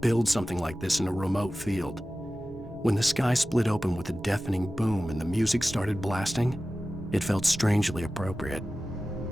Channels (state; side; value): normal; both; correlation 0.95